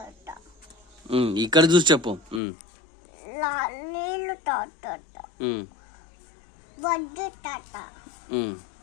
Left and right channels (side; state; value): right; drops out; at 2.4 s